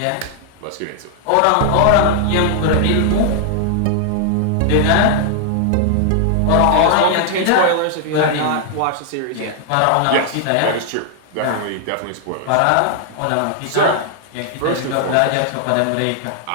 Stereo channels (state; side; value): different; both; correlation 0.00